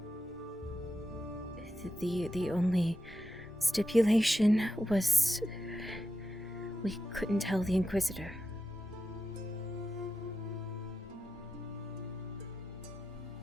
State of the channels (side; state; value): both; normal; correlation 0.89